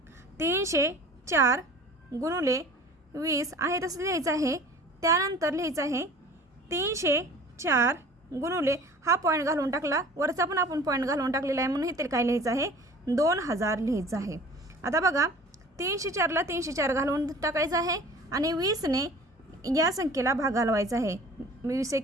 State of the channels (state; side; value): normal; both; correlation 0.45